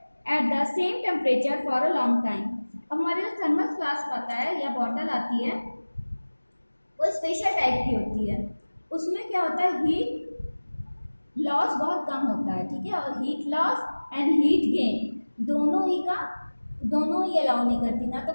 at the same temperature for a long time. हमारे जो thermos flask आता है या bottle आती है वो special type की होती है, उसमें क्या होता है, हीट लॉस बहुत कम होता है, ठीक है, और heat loss and heat gain दोनों ही अलाउ नहीं करती, ना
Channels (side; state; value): both; inverted; correlation -1.00